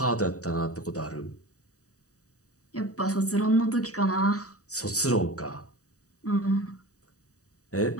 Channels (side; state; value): right; late; 0.66 ms